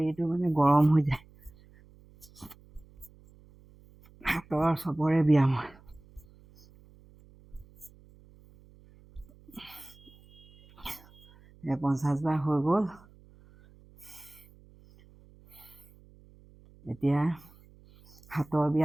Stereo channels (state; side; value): noise; right; hum, 26 dB below the sound